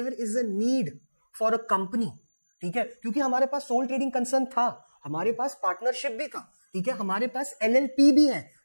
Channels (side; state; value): both; inverted; correlation -1.00